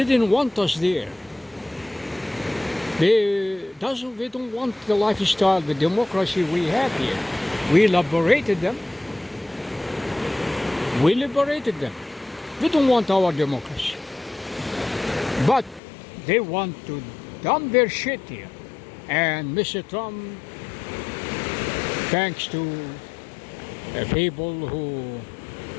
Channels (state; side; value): drops out; right; at 15.8 s